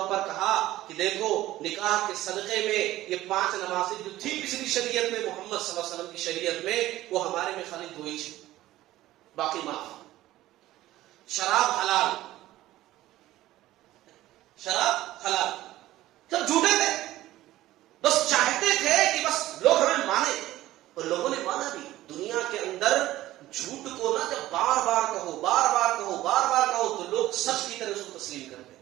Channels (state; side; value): quieter; left; 15.5 dB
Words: پر کہا کہ دیکھو نکاح کے صدقے میں یہ 5 نمازیں جو تھی پچھلی شریعت میں، محمد صلی اللہ علیہ وسلم کی شریعت میں، وہ ہمارے میں خالی 2 ہی، باقی معاف. شراب حلال، شراب حلال. سب جھوٹے تھے، بس چاہتے تھے کہ بس لوگ ہمیں مانے. اور لوگوں نے مانا بھی. دنیا کے اندر جھوٹ کو نہ جب بار بار کہو، بار بار کہو، بار بار کہو تو لوگ سچ کی طرح اس کو تسلیم کرتے